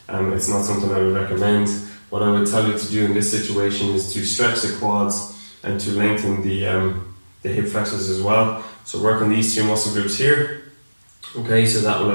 It's not something I would recommend. What I would tell you to do in this situation is to stretch the quads and to lengthen the hip flexors as well. So work on these two muscle groups here. Okay, so that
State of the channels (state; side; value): inverted; both; correlation -1.00